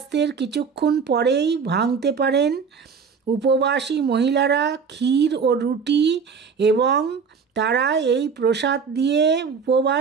কিছুক্ষণ পরেই ভাঙতে পারেন। উপবাসী মহিলারা ক্ষীর ও রুটি এবং তারা এই প্রসাদ দিয়ে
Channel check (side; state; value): left; quieter; 5.8 dB